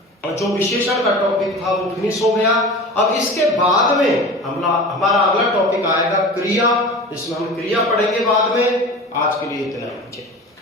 जो विशेषण का टॉपिक था वो फिनिश हो गया। अब इसके बाद में हमारा अगला टॉपिक आएगा क्रिया, इसमें हम क्रिया पढ़ेंगे बाद में। आज के लिए इतना ही।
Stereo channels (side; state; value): both; normal; correlation 0.35